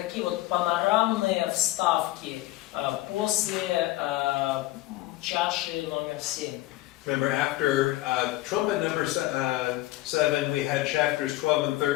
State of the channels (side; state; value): right; quieter; 17.0 dB